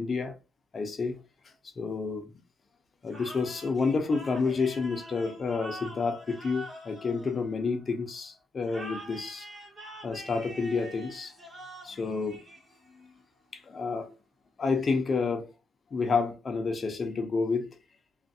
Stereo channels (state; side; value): quieter; right; 4.1 dB